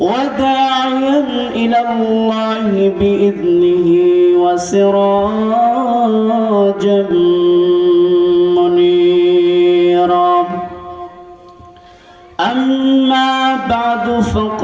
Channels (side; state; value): both; identical; correlation 1.00